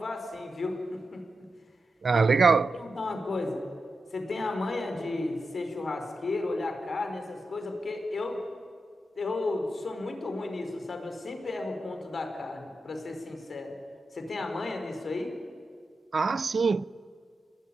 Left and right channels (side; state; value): both; normal; correlation 0.90